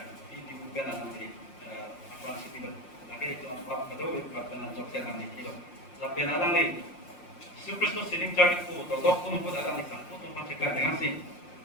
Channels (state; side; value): late; right; 5.7 ms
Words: bi ben alang ni apa si bi lagi itu pop kado pop ben jo siarang ni kilo la ben alang ni Yesus Kristus sining cari ku do dok pun alang ni sang pun kan dengan si